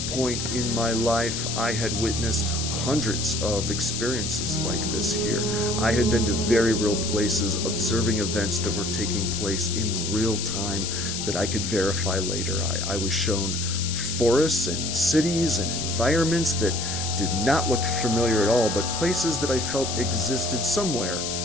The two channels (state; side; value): noise; left; hiss, 3 dB below the sound